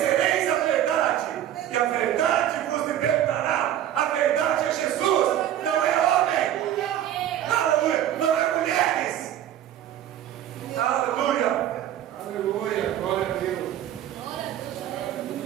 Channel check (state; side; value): quieter; left; 11.4 dB